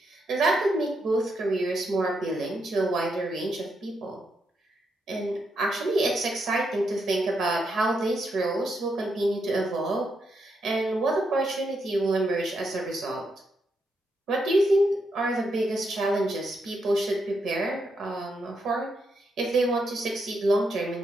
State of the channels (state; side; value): normal; both; correlation 0.81